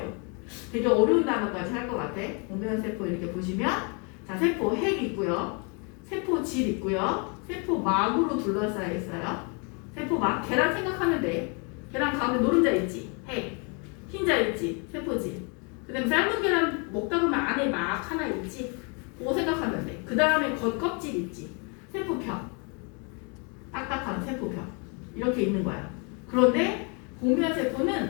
되게 어려운 단어까지 할 것 같아. 공변 세포 이렇게 보시면 자 세포 핵 있고요. 세포 질 있고요. 세포 막으로 둘러싸여 있어요. 세포 막 계란 생각하면 돼. 계란 가운데 노른자 있지. 핵. 흰자 있지. 세포질. 그 다음에 삶은 계란 먹다 보면 안에 막 하나 있지. 그거 생각하면 돼. 그 다음에 겉껍질 있지. 세포벽. 딱딱한 세포벽. 이렇게 있는 거야. 그런데 공변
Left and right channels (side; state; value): right; quieter; 35.0 dB